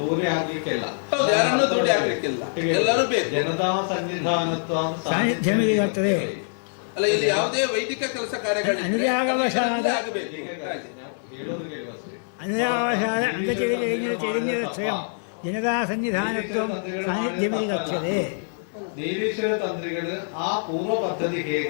ಆಗ್ಲಿಕ್ಕಿಲ್ಲ ಯಾರನ್ನು ದೂರ ಆಗ್ಲಿಕ್ಕಿಲ್ಲ ಎಲ್ಲರೂ ಬೇಕು ಜನತಾ ಸನ್ನಿಧಾನತ್ವ ಸಾನ್ನಿಧ್ಯವಿರುತ್ತದೆ ಅಲ್ಲ ಇಲ್ಲಿ ಯಾವುದೇ ವೈದಿಕ ಕೆಲಸ ಕಾರ್ಯಗಳು അനുരാഗവശാല സ്വയം ಜನತಾ ಸನ್ನಿಧಾನತ್ವ ಸಾನ್ನಿಧ್ಯವಿರುತ್ತದೆ ನೀಲೇಶ್ವರ ತಂತ್ರಿಗಳು ಆ ಪೂರ್ವ ಪದ್ಧತಿ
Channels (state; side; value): silent; right; 60 dB below the other